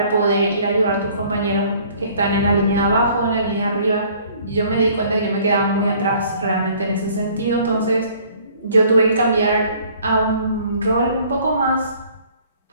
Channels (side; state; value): both; inverted; correlation -0.56